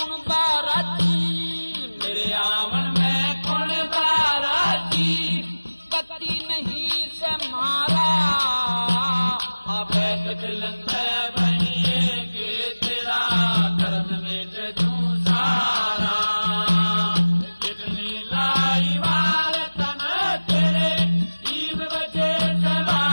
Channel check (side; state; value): both; inverted; correlation -1.00